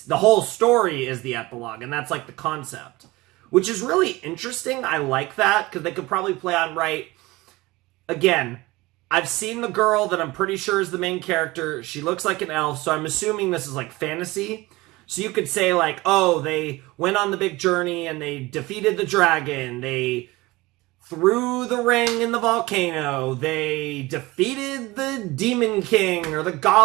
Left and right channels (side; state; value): left; quieter; 20.9 dB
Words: whole story is the epilogue, and that's the concept. Which is really interesting. I like that, because they could probably play on right. Again, I've seen the girl that I'm pretty sure is the main character. She looks like an elf, so I'm assuming this is fantasy. So you could say oh, they went on the big journey and they defeated the dragon. They threw the ring in the volcano. They defeated the demon king or the